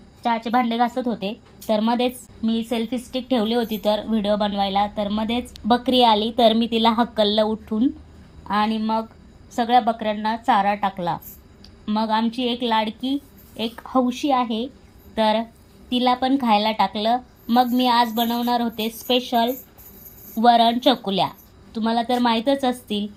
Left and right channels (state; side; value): identical; both; correlation 1.00